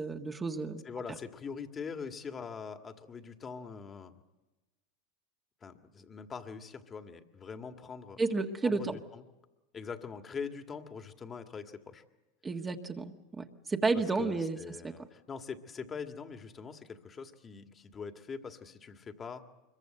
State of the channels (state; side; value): normal; both; correlation 0.78